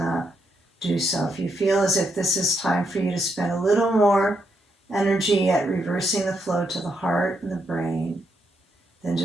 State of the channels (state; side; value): normal; both; correlation 0.79